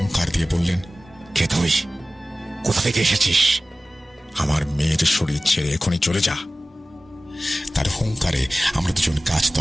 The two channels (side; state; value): both; normal; correlation 0.97